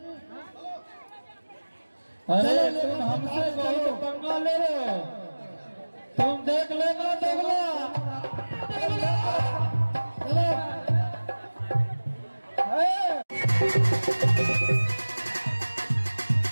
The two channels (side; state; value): both; inverted; correlation -1.00